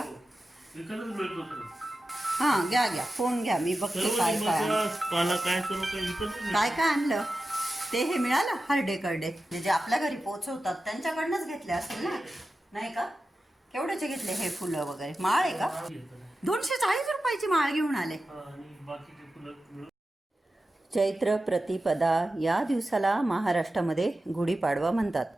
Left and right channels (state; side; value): normal; both; correlation 0.93